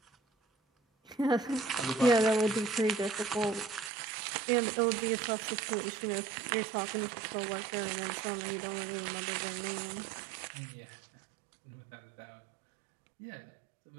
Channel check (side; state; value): left; drops out; at 3.9 s